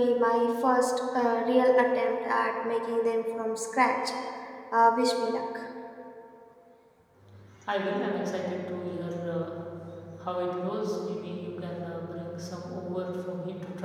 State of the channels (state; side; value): identical; both; correlation 1.00